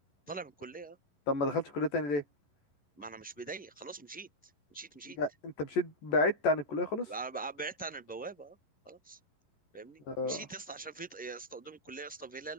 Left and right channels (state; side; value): late; right; 11 ms